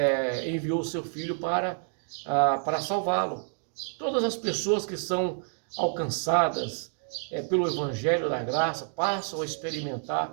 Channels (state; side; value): silent; left; 59 dB below the other